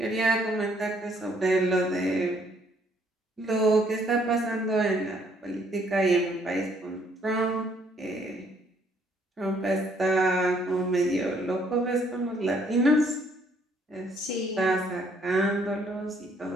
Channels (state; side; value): normal; both; correlation 0.66